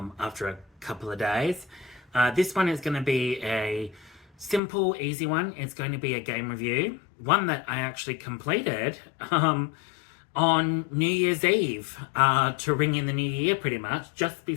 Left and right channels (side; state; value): right; drops out; at 4.6 s